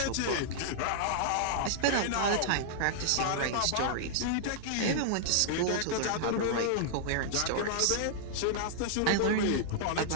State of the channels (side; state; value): both; different; correlation -0.01